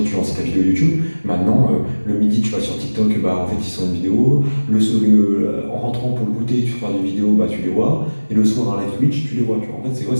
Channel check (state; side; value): inverted; both; correlation -1.00